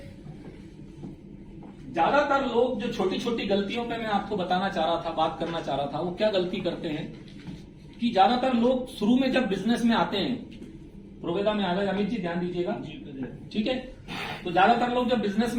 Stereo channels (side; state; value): both; identical; correlation 1.00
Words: ज्यादातर लोग जो छोटी छोटी गलतियों पे मैं आपको बताना चाह रहा था, बात करना चाह रहा था, वो क्या गलती करते हैं कि ज्यादातर लोग शुरू में जब बिजनेस में आते हैं, प्रोवेदा में आ गए, अमित जी ध्यान दीजिएगा, ठीक है। तो ज्यादातर लोग जब बिजनेस